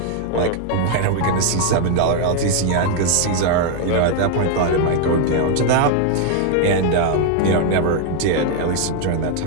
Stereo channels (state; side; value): different; both; correlation 0.00